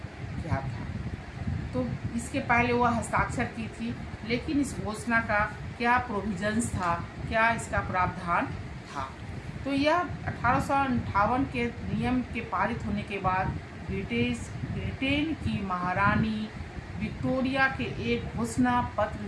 क्या था। तो इसके पहले वह हस्ताक्षर की थी, लेकिन इस घोषणा का क्या प्रोविजंस था, क्या इसका प्रावधान था। तो यह 1858 के नियम के पारित होने के बाद ब्रिटेन की महारानी विक्टोरिया के एक घोषणा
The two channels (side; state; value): both; identical; correlation 1.00